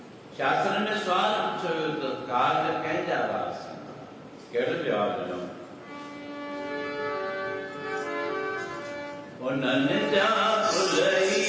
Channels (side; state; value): both; identical; correlation 1.00